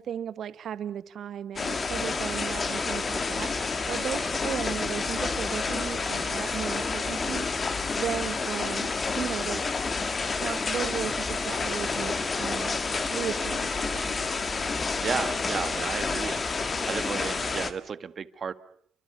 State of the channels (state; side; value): normal; both; correlation 0.84